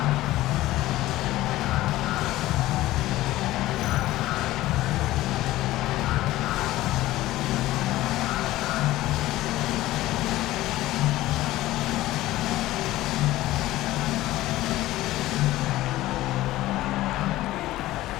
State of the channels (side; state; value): right; quieter; 16.4 dB